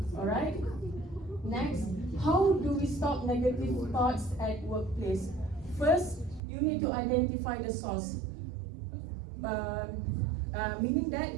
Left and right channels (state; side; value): drops out; left; at 6.4 s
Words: All right. Next, how do we stop negative thoughts at workplace? First, you need to identify the source, meaning that